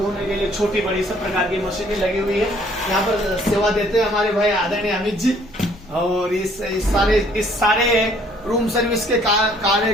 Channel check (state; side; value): noise; left; rumble, 23 dB below the sound